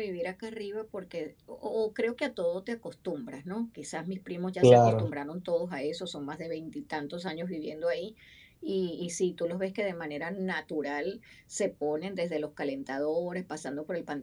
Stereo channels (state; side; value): identical; both; correlation 1.00